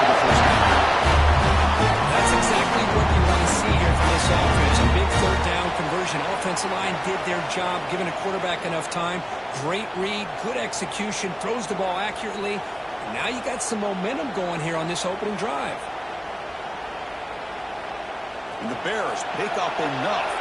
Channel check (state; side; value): identical; both; correlation 1.00